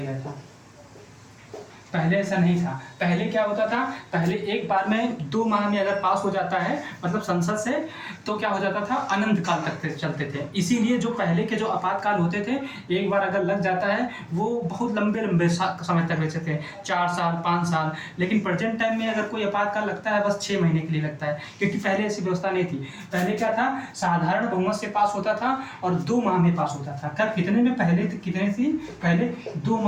था। पहले ऐसा नहीं था। पहले क्या होता था, पहले एक बार में 2 माह में अगर पास हो जाता है, मतलब संसद से, तो क्या हो जाता था, अनंत काल तक चलते थे। इसीलिए जो पहले के जो आपातकाल होते थे, एक बार अगर लग जाता है, वो बहुत लंबे समय तक रहते थे, 4 साल 5 साल। लेकिन प्रेजेंट टाइम में अगर कोई आपातकाल लगता है, बस 6 महीने के लिए लगता है, क्योंकि पहले ऐसी व्यवस्था नहीं थी। पहले क्या था, साधारण बहुमत से पास होता था और 2 माह में पास होता था। कब, कितने में, पहले कितने थी, पहले 2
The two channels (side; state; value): both; identical; correlation 1.00